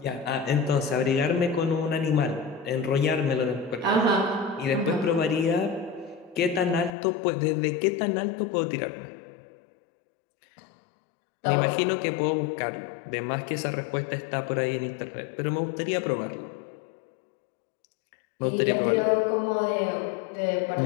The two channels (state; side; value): drops out; right; at 6.9 s